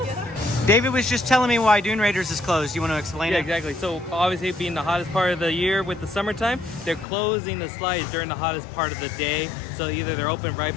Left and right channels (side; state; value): right; drops out; at 7.1 s